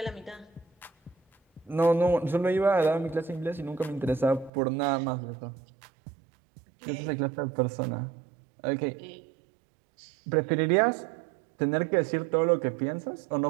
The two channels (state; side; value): drops out; left; at 4.5 s